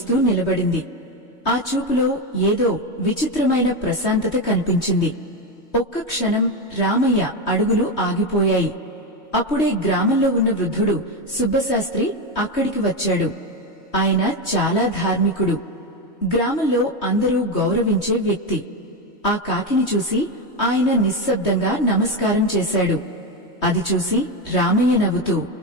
నిలబడింది. ఆ చూపులో ఏదో విచిత్రమైన ప్రశాంతత కనిపించింది. ఒక్క క్షణం రామయ్య అడుగులు ఆగిపోయాయి. అప్పుడే గ్రామంలో ఉన్న వృద్ధుడు సుబ్బశాస్త్రి అక్కడికి వచ్చాడు. ఆయన చాలా ధార్మికుడు. గ్రామంలో అందరూ గౌరవించే వ్యక్తి. ఆ కాకిని చూసి ఆయన నిశ్శబ్దంగా నమస్కారం చేశాడు. అది చూసి రామయ్య నవ్వుతూ,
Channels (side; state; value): right; late; 3.2 ms